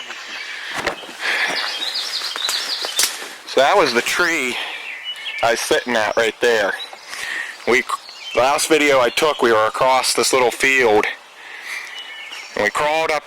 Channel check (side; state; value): both; identical; correlation 1.00